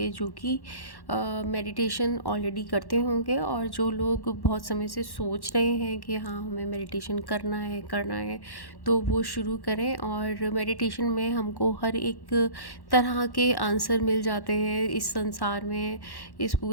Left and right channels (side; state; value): right; late; 1.1 ms